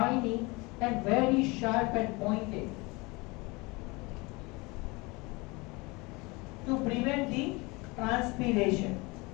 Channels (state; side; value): quieter; right; 25.6 dB